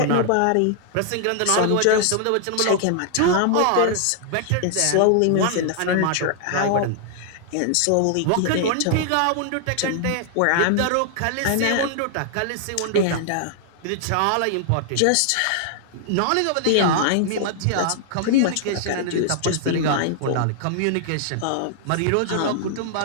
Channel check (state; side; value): different; both; correlation -0.01